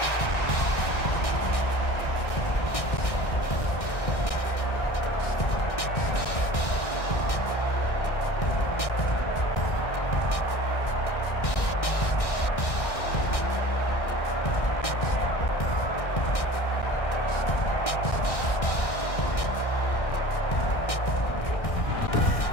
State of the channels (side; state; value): right; late; 1.6 ms